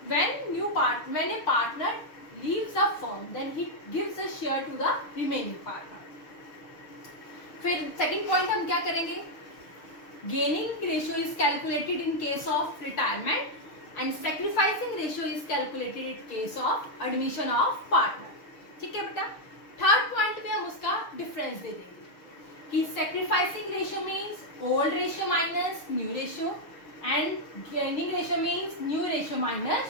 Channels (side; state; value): right; late; 6.5 ms